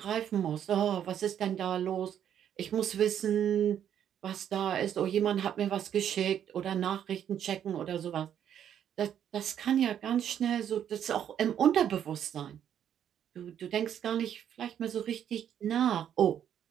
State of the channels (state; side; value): quieter; left; 9.6 dB